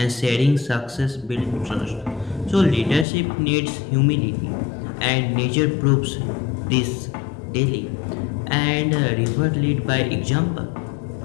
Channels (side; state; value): right; drops out; at 3.1 s